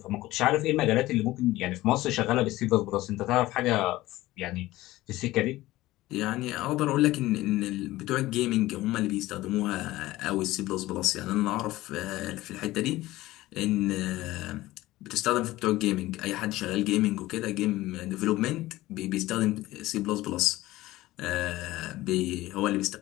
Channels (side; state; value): right; quieter; 17.3 dB